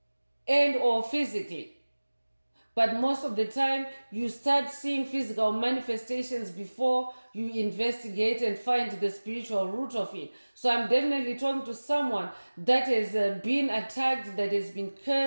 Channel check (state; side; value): inverted; both; correlation -1.00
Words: and or physically. But most of the time, you start seeing physical manifestations before you investigate and find the spiritual root of it. So I'm definitely talking to someone that has been attacked, that has been